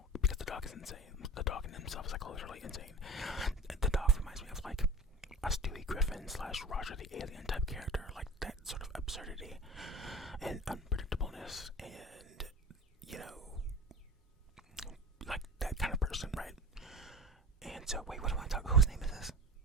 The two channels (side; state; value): both; normal; correlation 0.36